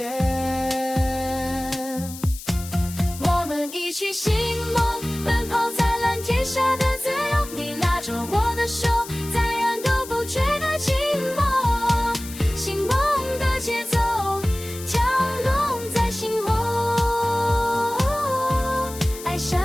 我们一起寻梦，奔跑在蓝天下的自由。你拉着我的手，再远都不觉得寂寞。醒梦的节奏，跳动在心窝，爱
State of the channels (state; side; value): noise; left; hiss, 13 dB below the sound